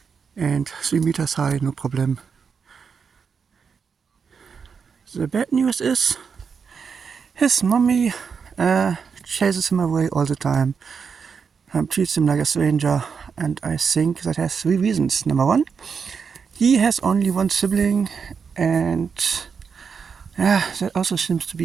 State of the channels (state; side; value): quieter; left; 6.0 dB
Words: And 3 meters high, no problem. The bad news is his mommy chases him away all the time, treats him like a stranger, and I think that has 3 reasons. Number 1, he has only 1 sibling, and that also seems to